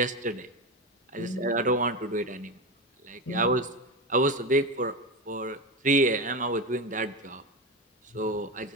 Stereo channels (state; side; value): normal; both; correlation 0.18